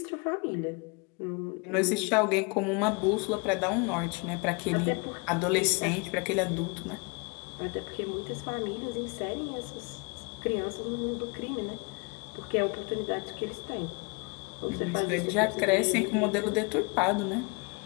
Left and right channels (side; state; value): right; quieter; 31.8 dB